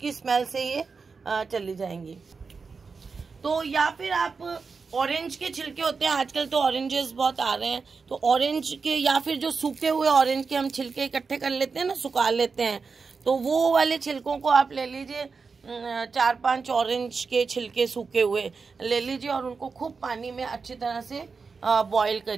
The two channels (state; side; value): quieter; left; 4.9 dB